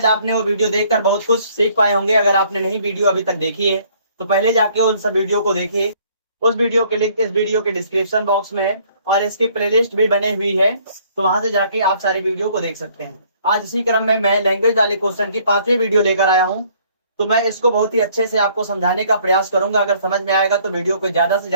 आपने वो वीडियो देखकर बहुत कुछ सीख पाए होंगे। अगर आपने नहीं वीडियो अभी तक देखी है तो पहले जाके उन सब वीडियो को देखिए। उस वीडियो के लिंक इस वीडियो के डिस्क्रिप्शन बॉक्स में है और इसकी प्लेलिस्ट भी बनी हुई है, तो वहां से जाके आप सारी वीडियो को देख सकते हैं। आज इसी क्रम में मैं लैंग्वेज वाले क्वेश्चन की 5वीं वीडियो लेकर आया हूँ। तो मैं इसको बहुत ही अच्छे से आपको समझाने का प्रयास करूंगा। अगर समझ में आएगा तो वीडियो को ज्यादा से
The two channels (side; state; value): both; inverted; correlation -0.61